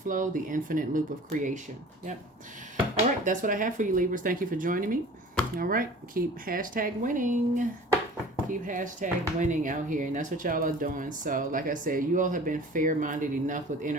the infinite loop of creation. Yep. All right, that's what I have for you, Libras. Thank you for joining me. All right, keep #winning. Keep #winning out here, and that's what y'all are doing. So, like I said, you all have been fair-minded enough with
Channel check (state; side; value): normal; both; correlation 0.44